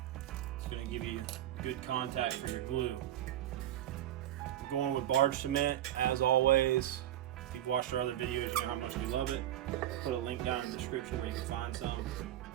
It's going to give you good contact for your glue. I'm going with barge cement as always. If you've watched our other videos, you know how much we love it. Put a link down in the description where you can find some.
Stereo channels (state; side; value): quieter; left; 12.5 dB